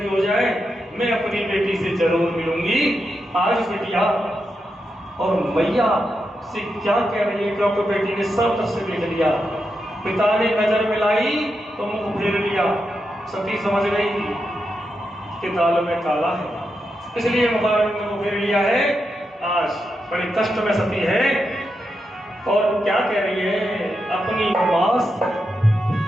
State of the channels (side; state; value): both; normal; correlation 0.86